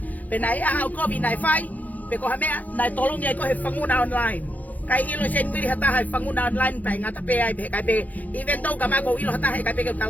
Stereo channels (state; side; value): late; right; 0.079 ms